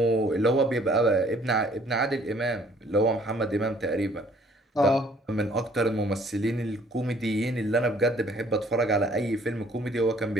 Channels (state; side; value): normal; both; correlation 0.59